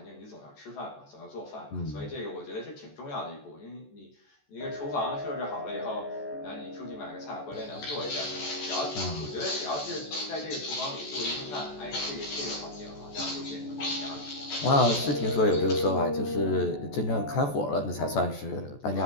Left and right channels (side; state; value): right; late; 14 ms